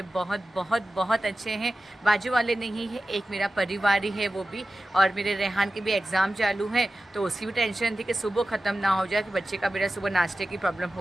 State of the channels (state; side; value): normal; both; correlation 0.94